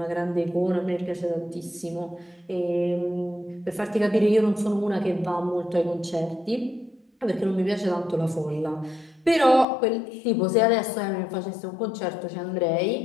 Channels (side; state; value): right; drops out; at 9.7 s